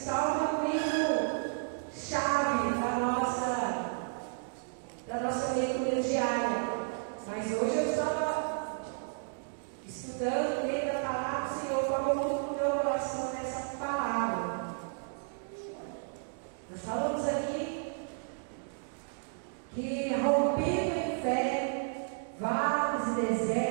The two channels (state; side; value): silent; left; digital silence